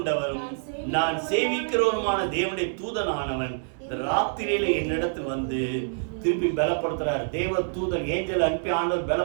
நான் சேவிக்கிறவருமான தேவனுடைய தூதனானவன் ராத்திரியில என்னிடத்தில் வந்து திருப்பி பலப்படுத்துறார். தேவ தூதன் ஏஞ்சல் அனுப்பி ஆண்டவர்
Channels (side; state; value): left; silent; 61 dB below the other